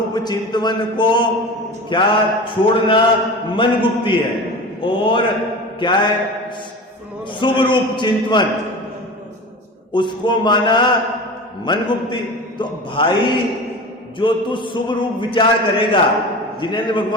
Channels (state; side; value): normal; both; correlation 0.32